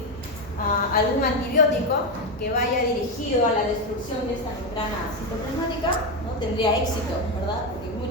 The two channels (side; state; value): both; normal; correlation 0.10